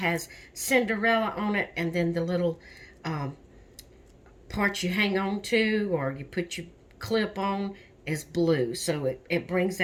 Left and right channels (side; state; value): both; identical; correlation 1.00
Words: Cinderella on it. And then the little part you hang on to, or you put your clip on, is blue. So it brings